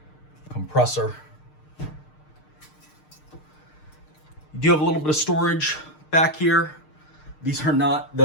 compressor. You do have a little bit of storage back here. These are not,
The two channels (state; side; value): late; right; 6.6 ms